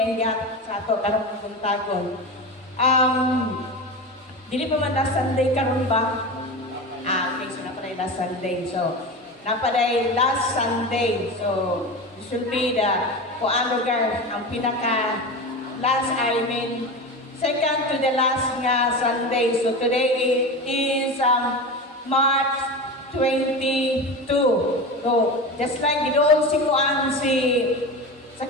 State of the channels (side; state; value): both; normal; correlation 0.26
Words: gihatag sa ato karong kabuntagon. Dili pa man last Sunday karon ba? Okay, so napaday last Sunday. So, napaday last Sunday. So, this will be the lugar, ang pinaka last, second to the last nga Sunday. So, today is March 22. So, just like ginoon si Kuan sa